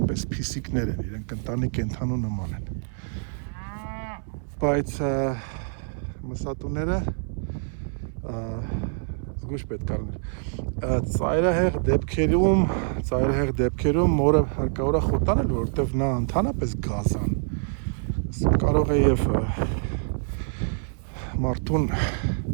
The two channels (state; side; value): silent; left; 61 dB below the other